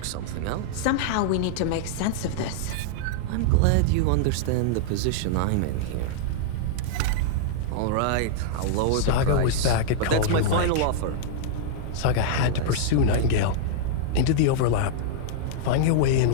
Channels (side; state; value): both; different; correlation -0.01